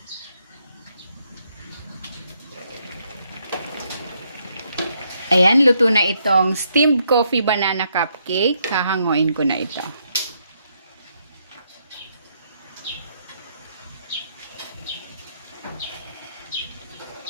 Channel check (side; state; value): both; inverted; correlation -0.75